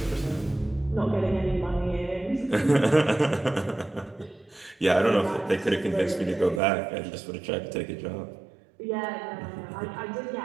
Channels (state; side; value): drops out; left; at 6.6 s